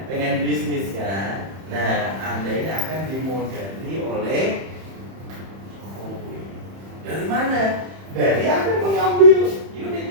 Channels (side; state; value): left; late; 31 ms